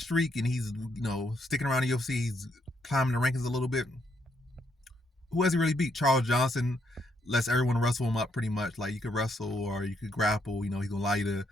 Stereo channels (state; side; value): normal; both; correlation 0.75